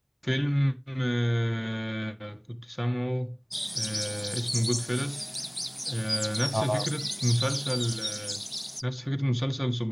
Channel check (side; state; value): both; identical; correlation 1.00